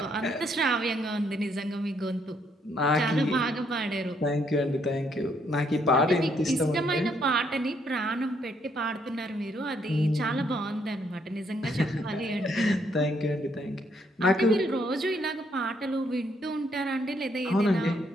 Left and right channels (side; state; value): both; normal; correlation 0.71